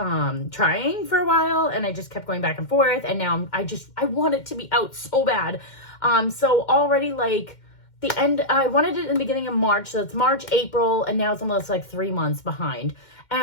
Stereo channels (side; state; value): right; late; 2.1 ms